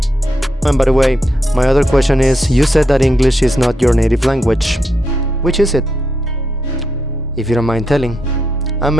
And by the way, my other question is, you said that English is not your native language. Which is it? If you don't mind telling. I'm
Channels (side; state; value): both; normal; correlation 0.82